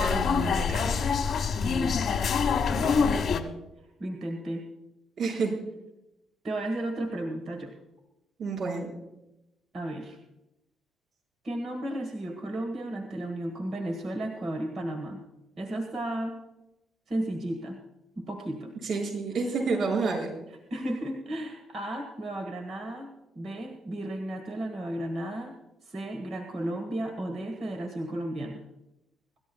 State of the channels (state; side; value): normal; both; correlation 0.80